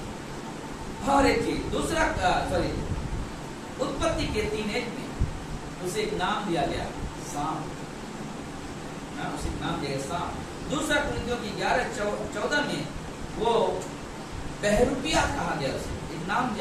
और एक चीज दूसरा उत्पत्ति के 3:1 में उसे एक नाम दिया गया, सांप। उसे एक नाम दिया गया, सांप। दूसरा कुरिन्थियों की 11:14 में वो बहरूपिया कहा गया, उसे एक नाम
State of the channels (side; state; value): both; identical; correlation 1.00